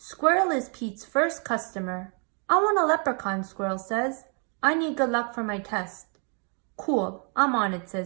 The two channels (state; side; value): quieter; left; 39.2 dB